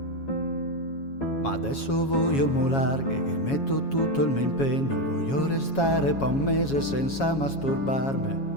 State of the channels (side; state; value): right; late; 7.3 ms